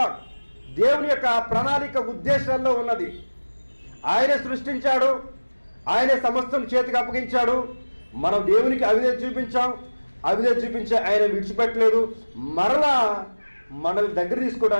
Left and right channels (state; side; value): inverted; both; correlation -1.00